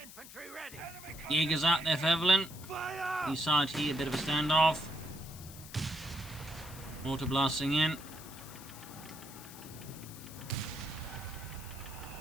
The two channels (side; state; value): left; noise; hiss, 15 dB below the sound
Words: infantry ready. Jägers out there for Evelynn. Fire! East side here, a bit of a standoff. Mortar blasting in.